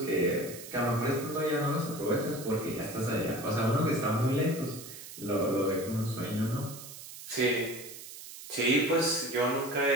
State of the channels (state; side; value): noise; right; hiss, 13 dB below the sound